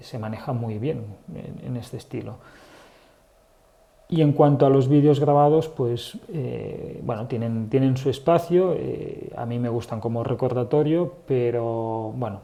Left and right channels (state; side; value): identical; both; correlation 1.00